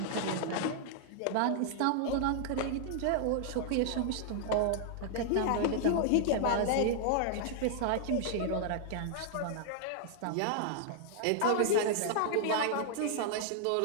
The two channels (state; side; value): different; both; correlation -0.01